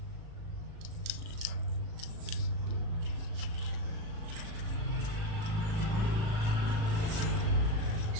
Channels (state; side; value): late; left; 37 ms